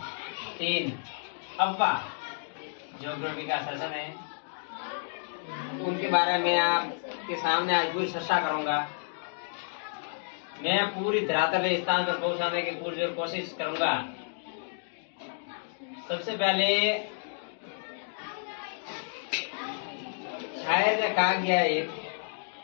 3 अव्वा ज्योग्राफी का सेशन है। उनके बारे में आपके सामने आज पूरी चर्चा करूंगा। मैं पूरी धरातल स्थान पर पहुंचाने की पूरी कोशिश करूंगा। सबसे पहले शायर ने कहा गया है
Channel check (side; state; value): right; silent; digital silence